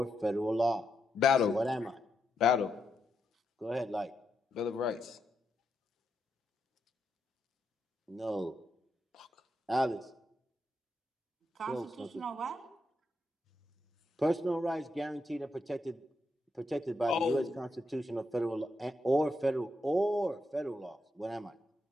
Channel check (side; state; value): both; normal; correlation 0.82